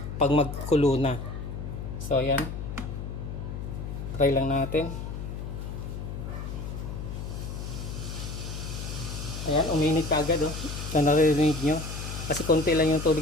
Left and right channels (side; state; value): left; noise; hum, 6 dB below the sound